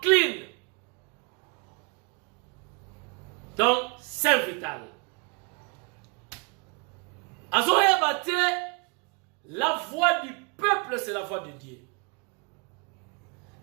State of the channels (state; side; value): quieter; left; 33.3 dB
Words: Donc, Saint-Vital. Azoya bate, la voix du peuple, c'est la voix de Dieu.